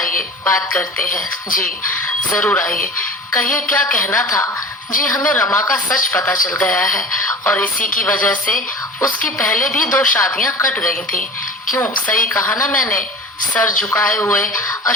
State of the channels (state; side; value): normal; both; correlation 0.37